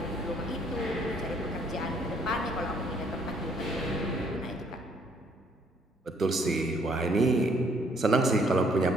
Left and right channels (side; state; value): both; normal; correlation 0.65